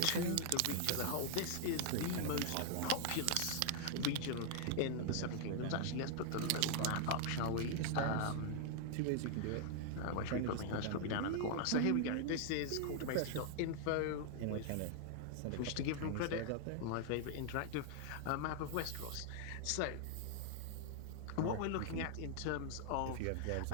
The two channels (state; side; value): different; both; correlation 0.00